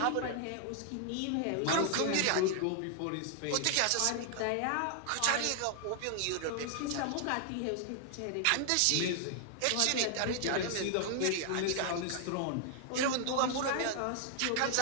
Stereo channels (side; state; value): both; different; correlation 0.00